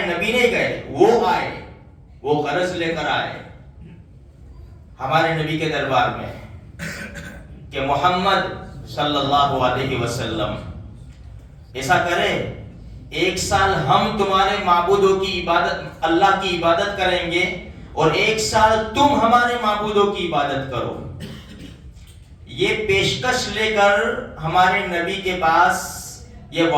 نبی نہیں گئے, وہ آئے, وہ غرض لے کر آئے ہمارے نبی کے دربار میں کہ محمد صلی اللہ علیہ وسلم ایسا کرے, ایک سال ہم تمہارے معبودوں کی عبادت, اللہ کی عبادت کریں گے اور ایک سال تم ہمارے معبودوں کی عبادت کرو. یہ پیشکش لے کر ہمارے نبی کے پاس یہ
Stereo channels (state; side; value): identical; both; correlation 1.00